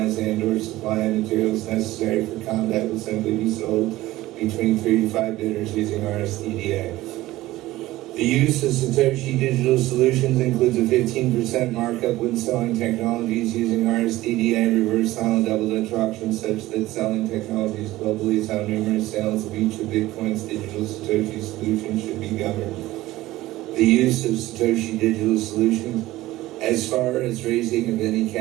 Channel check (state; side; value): quieter; left; 17.0 dB